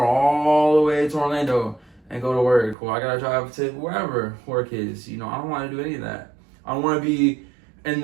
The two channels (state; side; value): drops out; left; at 2.8 s